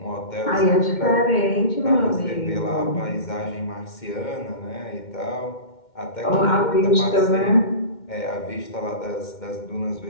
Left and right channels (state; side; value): late; right; 2.1 ms